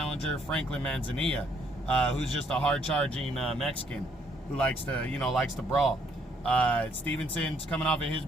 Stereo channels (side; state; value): both; normal; correlation 0.68